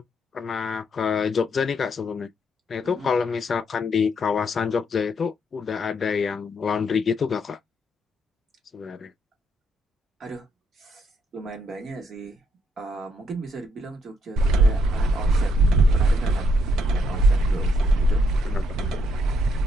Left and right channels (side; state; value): both; normal; correlation 0.73